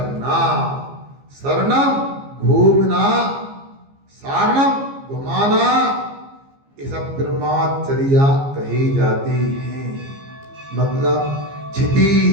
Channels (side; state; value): left; late; 15 ms